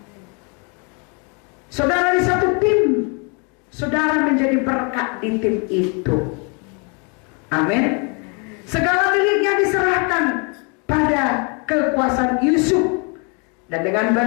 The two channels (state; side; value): quieter; right; 34.6 dB